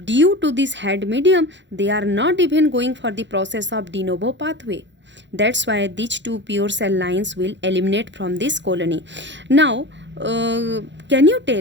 due to this head medium, they are not even going for the process of de novo pathway. That's why these two pure cell lines will eliminate from this colony. Now, can you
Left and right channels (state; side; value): late; left; 0.52 ms